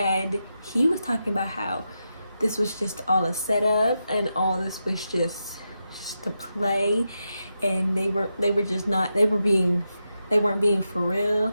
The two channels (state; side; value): inverted; both; correlation -0.87